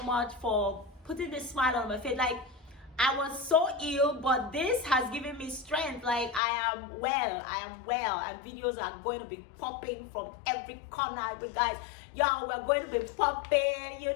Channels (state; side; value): drops out; right; at 6.4 s